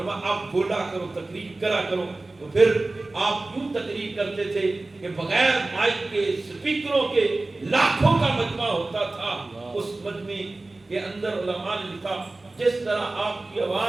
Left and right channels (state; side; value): quieter; left; 3.1 dB